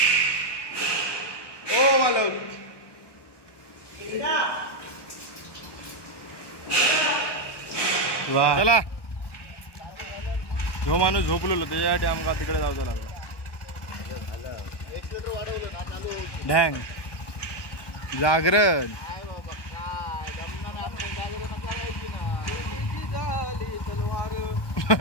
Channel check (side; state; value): right; late; 1.1 ms